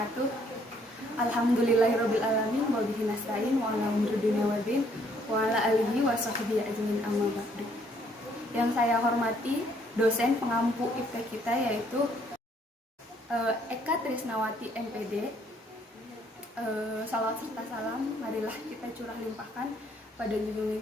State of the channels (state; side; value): normal; both; correlation 0.66